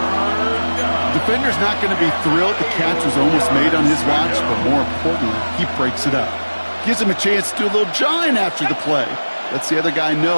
Defender's not going to be thrilled the catch was almost made on his watch, but more importantly, he breaks it up. Gives him a chance to do a little jawing after the play. Lets the other guy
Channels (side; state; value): both; inverted; correlation -1.00